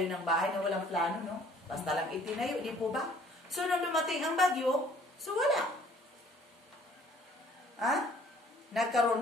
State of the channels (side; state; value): both; normal; correlation 0.57